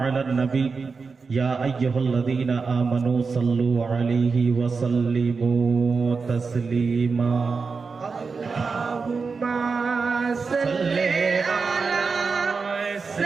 على النبي يا أيها الذين آمنوا صلوا عليه وسلموا تسليما. اللهم صل على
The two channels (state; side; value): quieter; left; 4.8 dB